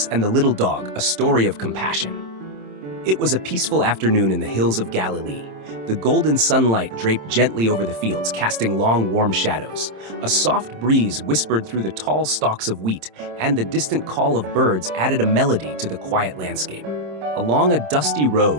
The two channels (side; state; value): left; late; 26 ms